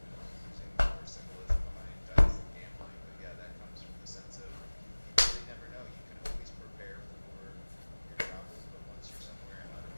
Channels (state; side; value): inverted; both; correlation -1.00